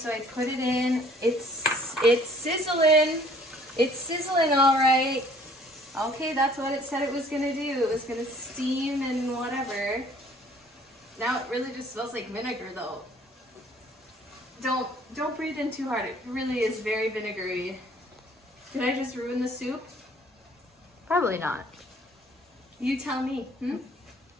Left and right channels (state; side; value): normal; both; correlation 0.57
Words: I put it in. It's sizzling. It's sizzling all right. Okay, that's what it said it was gonna do. It was gonna steam and whatever. Now it really just smells like vinegar though. Don't breathe in too hard. It really is very vinegary. Did I just ruin the soup? Probably not. You tell me.